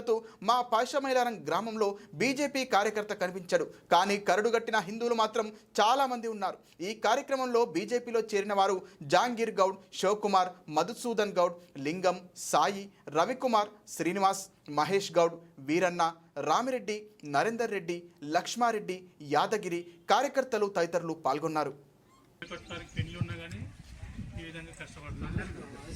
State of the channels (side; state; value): both; identical; correlation 1.00